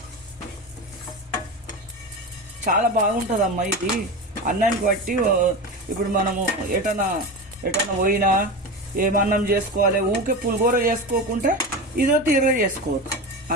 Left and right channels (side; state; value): both; normal; correlation 0.24